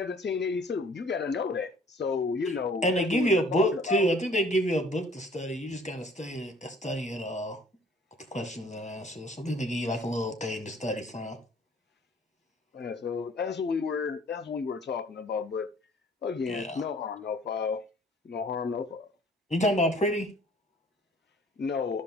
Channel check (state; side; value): normal; both; correlation 0.55